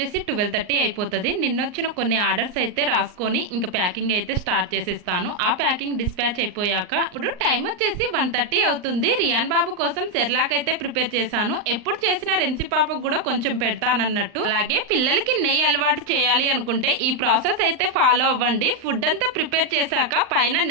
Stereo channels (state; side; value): late; left; 39 ms